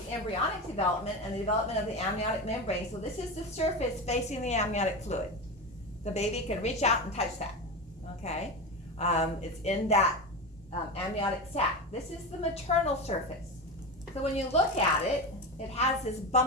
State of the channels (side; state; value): both; normal; correlation 0.21